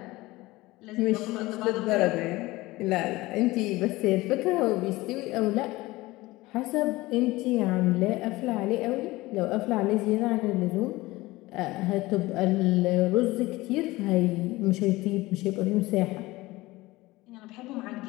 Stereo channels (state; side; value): quieter; right; 19.7 dB